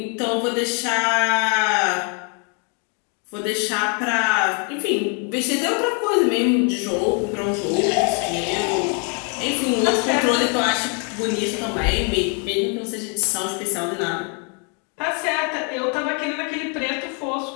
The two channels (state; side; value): quieter; right; 38.1 dB